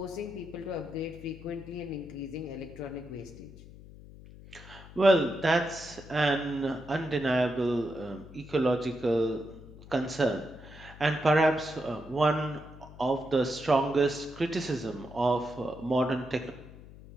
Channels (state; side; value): noise; left; hum, 18 dB below the sound